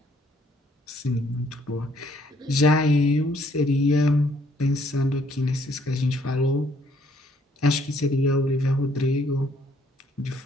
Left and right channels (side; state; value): both; normal; correlation 0.66